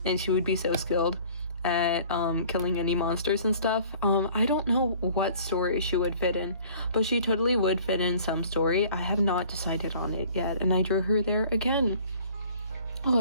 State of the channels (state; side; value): inverted; both; correlation -0.51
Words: and she would be so skilled at killing any monsters and stuff. I don't know what story she would fit in, but she totally would fit in some story. I have not decided on it yet, and I drew her there again. Oh, I